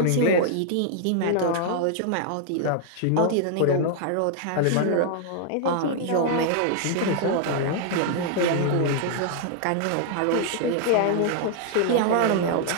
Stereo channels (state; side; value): different; both; correlation 0.00